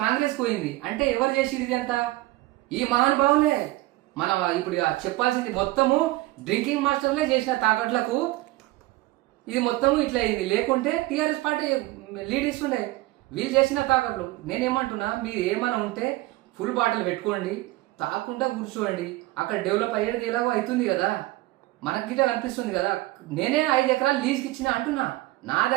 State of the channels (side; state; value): left; quieter; 18.9 dB